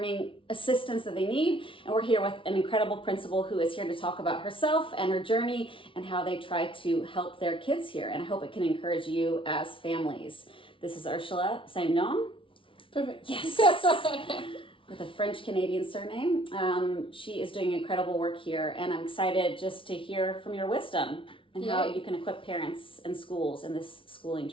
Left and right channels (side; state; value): right; late; 0.25 ms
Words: assistance that they need. And we're here with an incredible principal who is here to talk about herself and her journey and how they try to help their kids here. And I hope it can encourage you as families. This is Urshula Saindon. Perfect. Yes. With a French-Canadian surname. She is doing incredible work here, and I'm excited just to hear from your wisdom and how you can equip parents and schools in this schooling